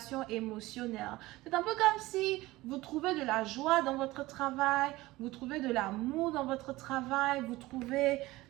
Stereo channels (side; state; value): left; quieter; 19.0 dB